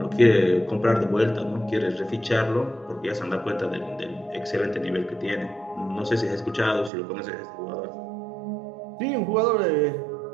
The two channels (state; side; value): drops out; left; at 6.9 s